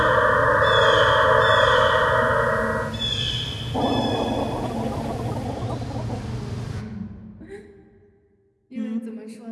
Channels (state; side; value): identical; both; correlation 1.00